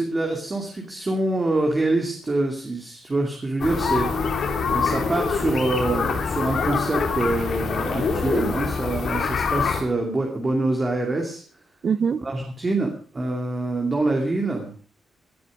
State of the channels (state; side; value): normal; both; correlation 0.83